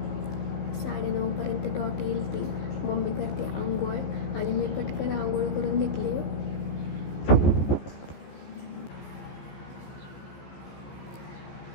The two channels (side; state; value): right; late; 15 ms